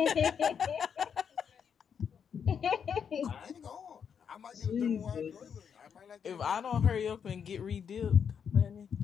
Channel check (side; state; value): right; quieter; 7.3 dB